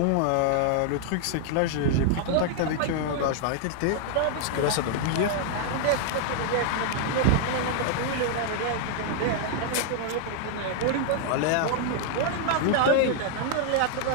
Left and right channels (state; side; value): different; both; correlation 0.00